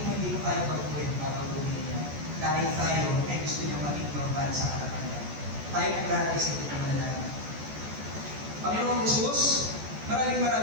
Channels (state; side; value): late; left; 14 ms